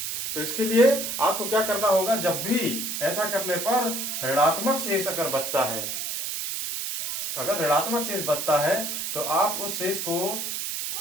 तो इसके लिए आपको क्या करना होगा? जब भी ऐसा करने पर ऋणात्मक शेष अगर बचता है, अगर ऋणात्मक शेष बचता है तो आप उस शेष को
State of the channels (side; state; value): right; noise; hiss, 3 dB below the sound